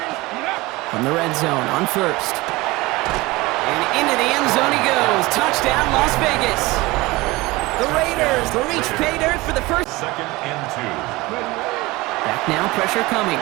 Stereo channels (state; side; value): quieter; left; 21.4 dB